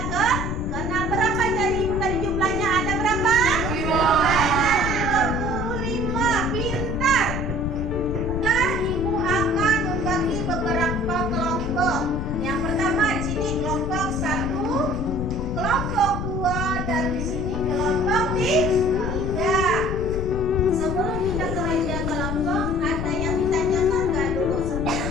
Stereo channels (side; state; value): left; noise; rumble, 3 dB below the sound